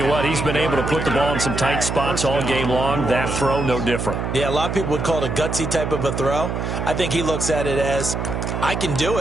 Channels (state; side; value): noise; right; hum, 3 dB below the sound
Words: what, he's been able to put the ball in some tight spots all game long. That throw, no different. Yeah, a lot of people would call it a gutsy type of a throw. I think he looks at it as, I can do